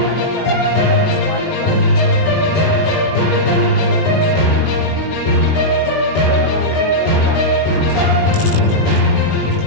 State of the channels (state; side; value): late; right; 20 ms